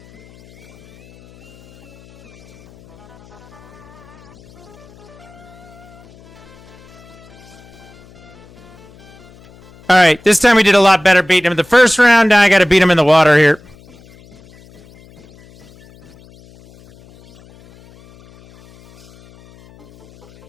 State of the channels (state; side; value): noise; left; hum, 25 dB below the sound